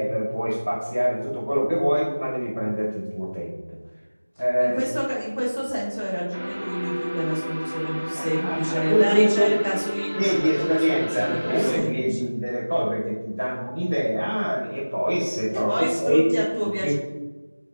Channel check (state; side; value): inverted; both; correlation -1.00